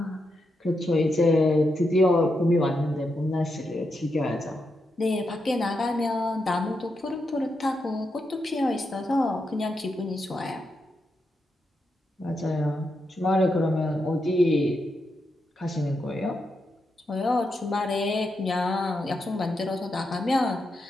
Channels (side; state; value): both; normal; correlation 0.84